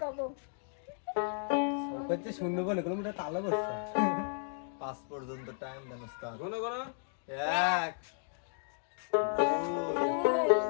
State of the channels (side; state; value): right; silent; digital silence